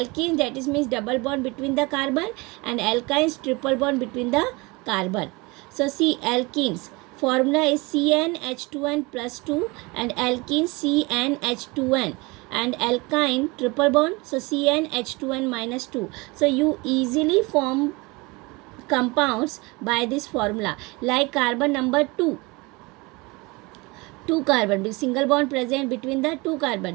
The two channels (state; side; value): quieter; left; 25.3 dB